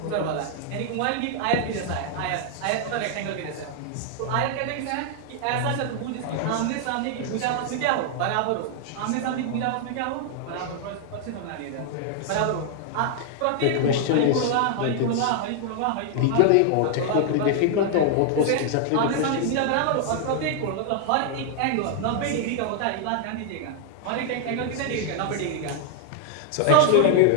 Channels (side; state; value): both; different; correlation 0.00